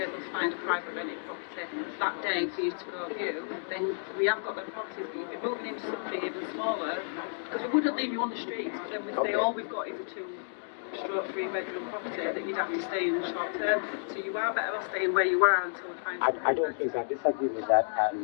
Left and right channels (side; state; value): right; silent; digital silence